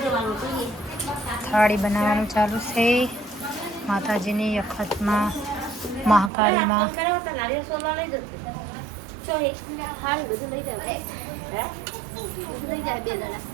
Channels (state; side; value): drops out; left; at 6.3 s